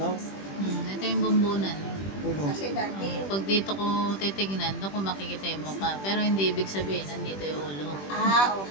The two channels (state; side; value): late; right; 21 ms